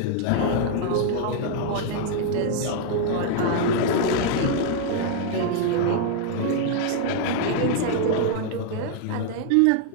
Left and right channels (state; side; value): different; both; correlation 0.00